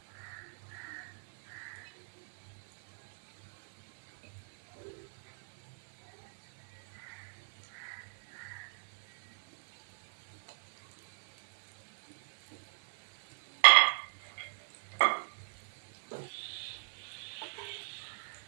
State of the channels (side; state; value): left; silent; digital silence